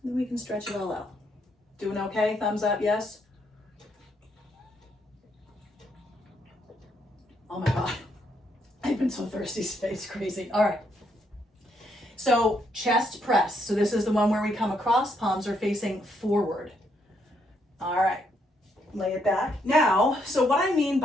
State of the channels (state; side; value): normal; both; correlation 0.75